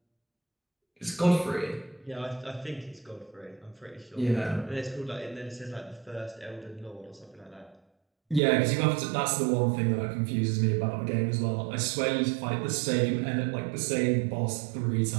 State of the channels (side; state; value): left; drops out; at 8.4 s